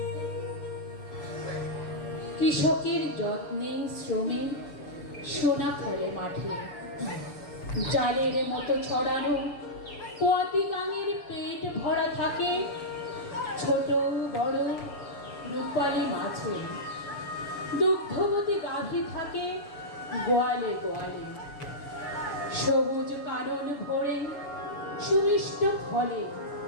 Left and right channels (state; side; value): late; right; 6.9 ms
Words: কৃষকের যত্নে শ্রমে সোনা ফলে মাঠে, জালের মতো ছড়ানো পতি গাঙের পেট ভরা থাকে ছোট বড় রূপালী মাছে। দুগ্ধবতী গাভী থাকে গোয়ালে গোয়ালে। সবুজ কানন ভরে সুমিষ্ট ফলে